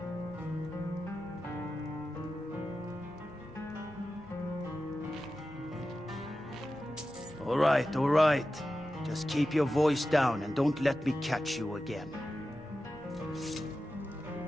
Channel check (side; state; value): both; normal; correlation 0.93